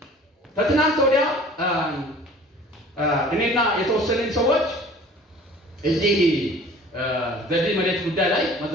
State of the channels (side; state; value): both; normal; correlation 0.47